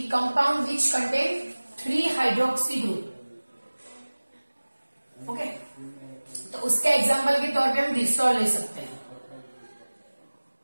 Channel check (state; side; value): inverted; both; correlation -1.00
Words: compound which contain 3 hydroxy group. Okay, तो उसके एग्जाम्पल के तौर पे हम ग्लिसरॉल ले सकते हैं,